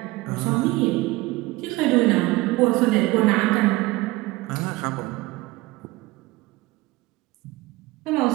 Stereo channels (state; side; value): quieter; left; 20.4 dB